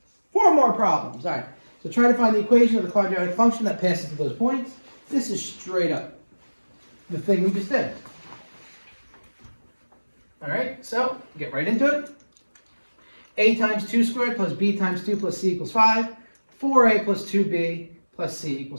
4 more problems. All right. So try to find the equation of the quadratic function that passes through those points. This is straight up the thing we just did. All right. So get right into it. A times 2 squared plus B times 2 plus C equals 5. 4A plus 2B plus C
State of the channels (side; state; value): both; inverted; correlation -1.00